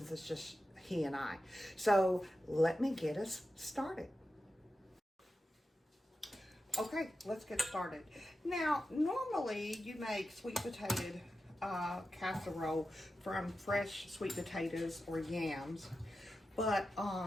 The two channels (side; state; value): both; normal; correlation 0.91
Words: it's just he and I. So let me get us started. Okay, let's get started. Now, normally you make sweet potato casserole from fresh sweet potatoes or yams, but